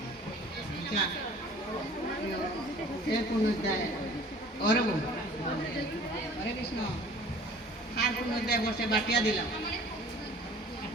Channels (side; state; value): both; normal; correlation 0.48